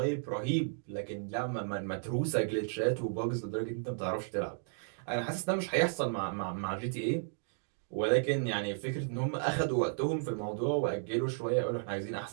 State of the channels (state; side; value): silent; left; digital silence